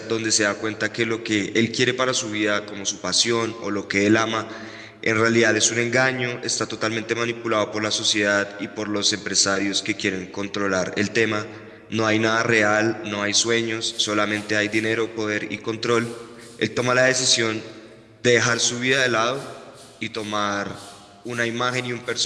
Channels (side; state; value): both; identical; correlation 1.00